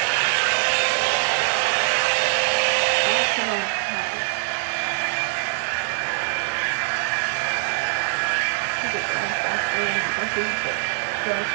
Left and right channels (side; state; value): left; silent; 62 dB below the other